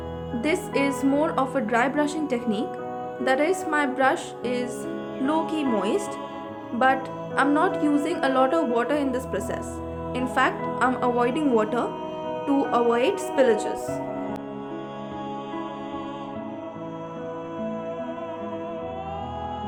This is more of a dry brushing technique, that is, my brush is low-key moist, but I'm not using a lot of water in this process. In fact, I'm avoiding water to avoid spillages.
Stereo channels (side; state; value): both; identical; correlation 1.00